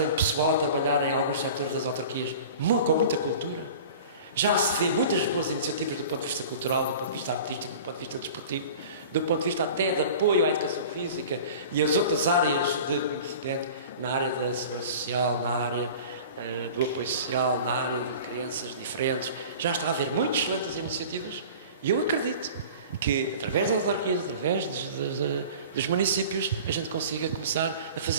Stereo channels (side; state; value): both; inverted; correlation -0.41